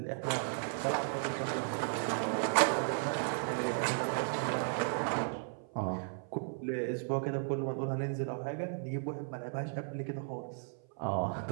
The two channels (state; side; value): silent; left; 54 dB below the other